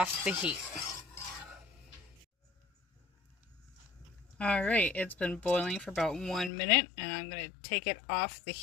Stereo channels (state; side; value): drops out; right; at 6.5 s